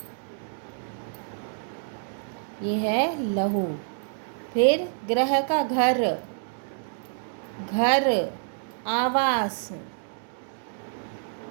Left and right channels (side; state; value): left; silent; digital silence